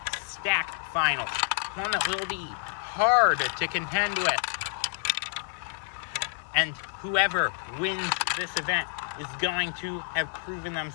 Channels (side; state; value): right; silent; digital silence